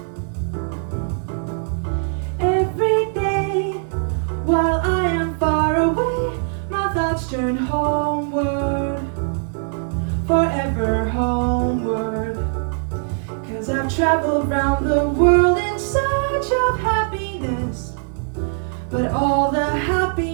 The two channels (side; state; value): left; silent; 63 dB below the other